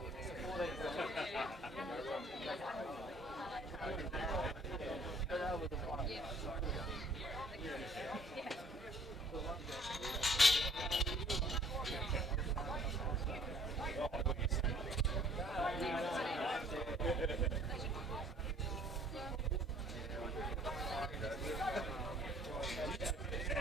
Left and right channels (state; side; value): normal; both; correlation 0.58